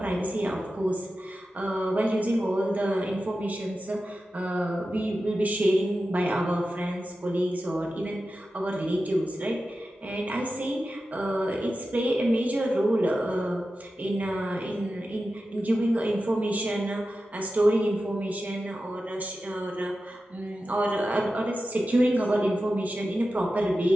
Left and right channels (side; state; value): both; normal; correlation 0.93